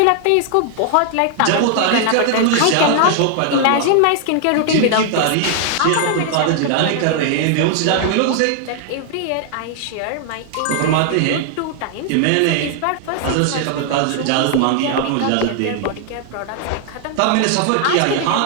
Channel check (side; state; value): both; different; correlation 0.00